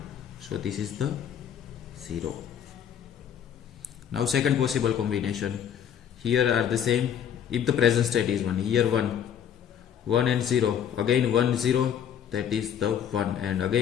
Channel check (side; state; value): right; quieter; 9.0 dB